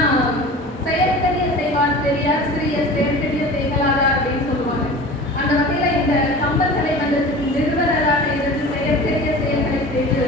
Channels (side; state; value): both; normal; correlation 0.38